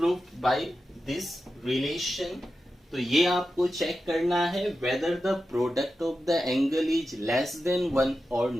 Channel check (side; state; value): both; normal; correlation 0.91